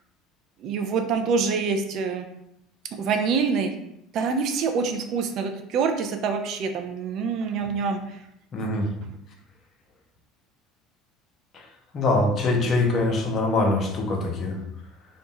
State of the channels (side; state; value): both; normal; correlation 0.40